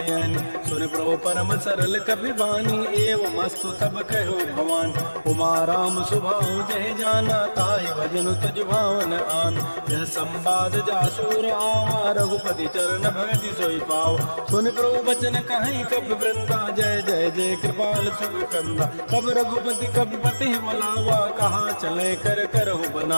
सुन प्रभु परम सरल कपि बानी एवं मस्तु तब कहो भवान उमा राम सुभाव जय जाना ताहि भजन तुझ भावन आन यह संवाद जासूर आवा रघुपति चरण भगति सोई पाव सुन प्रभु बचन कहीं कब वृंदा जय जय जय कृपाल सुख कंदा कब रघुपति कब पति बुलावा कहाँ चले कर करहु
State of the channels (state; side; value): inverted; both; correlation -1.00